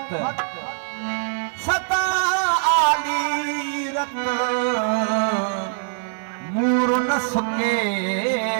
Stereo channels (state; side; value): silent; left; 64 dB below the other